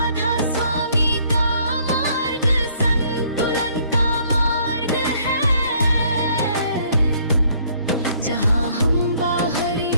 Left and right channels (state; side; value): inverted; both; correlation -0.63